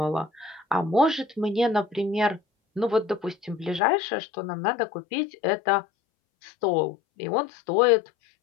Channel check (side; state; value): right; drops out; at 3.8 s